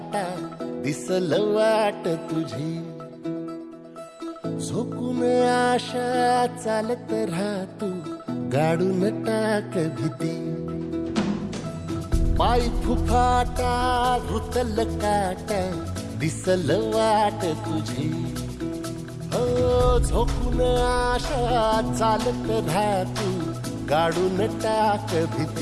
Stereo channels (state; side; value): identical; both; correlation 1.00